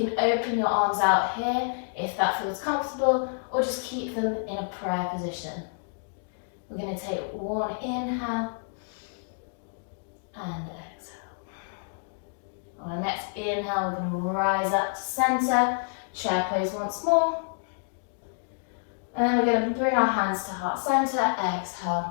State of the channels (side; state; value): right; silent; digital silence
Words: open your arms out here if that feels comfortable, or just keep them in a prayer position. We're going to take one inhale and exhale. On our next inhale, we're going to rise up to center, chair pose once more. And then we're going to bring our hands to heart center,